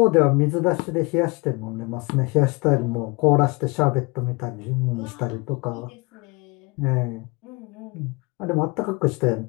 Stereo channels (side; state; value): right; quieter; 27.4 dB